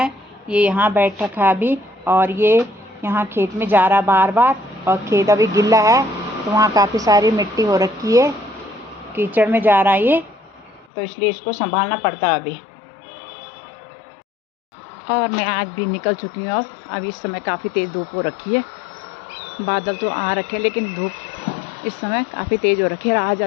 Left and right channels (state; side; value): drops out; right; at 10.9 s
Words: ये यहाँ बैठ रखा है अभी और ये यहाँ खेत में जा रहा बार बार, और खेत अभी गिल्ला है तो वहाँ काफ़ी सारी मिट्टी हो रखी है, कीचड़ में जा रहा है ये, तो इसलिए इसको संभालना पड़ता है अभी। और मैं आज भी निकल चुकी हूँ। अब इस समय काफ़ी तेज़ धूप हो रखी है। बादल तो आ रखे हैं लेकिन धूप इस समय काफ़ी तेज़ हो रखी है। आज